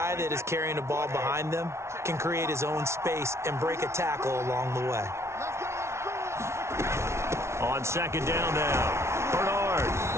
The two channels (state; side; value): late; left; 0.13 ms